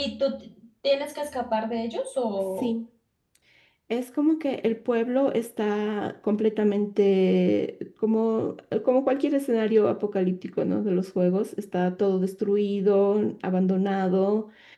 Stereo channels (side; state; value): both; identical; correlation 1.00